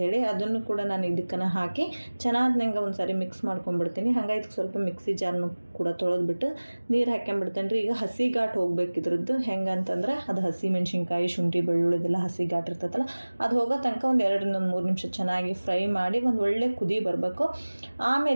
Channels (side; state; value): both; inverted; correlation -1.00